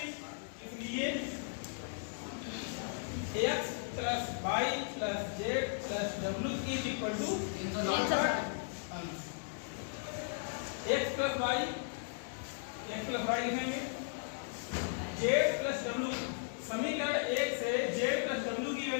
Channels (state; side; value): silent; right; digital silence